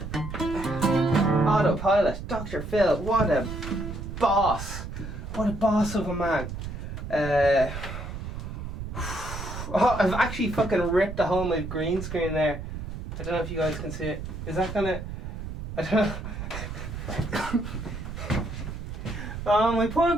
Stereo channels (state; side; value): noise; right; rumble, 7 dB below the sound